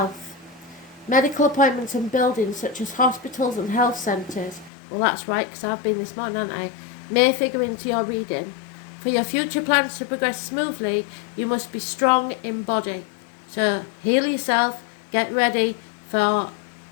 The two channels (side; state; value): right; drops out; at 4.7 s